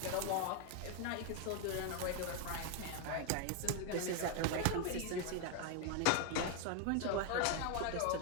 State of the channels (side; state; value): both; different; correlation 0.00